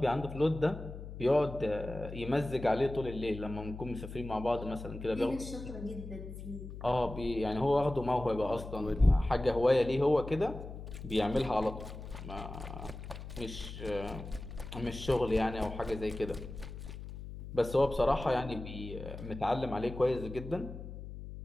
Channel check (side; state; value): left; noise; hum, 10 dB below the sound